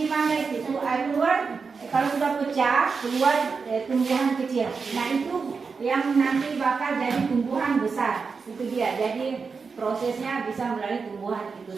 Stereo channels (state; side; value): quieter; left; 5.1 dB